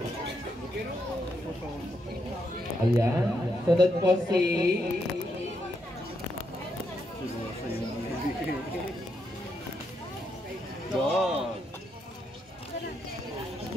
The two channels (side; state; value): both; normal; correlation 0.80